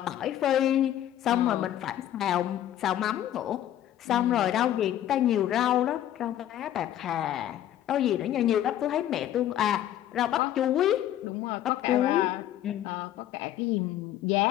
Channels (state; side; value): quieter; right; 12.0 dB